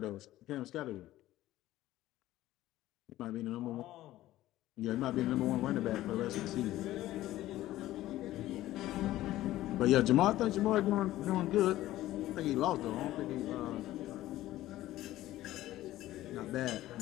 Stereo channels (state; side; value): quieter; right; 15.2 dB